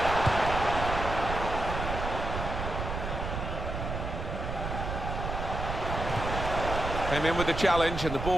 Came in with the challenge and the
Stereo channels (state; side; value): noise; right; rumble, 4 dB below the sound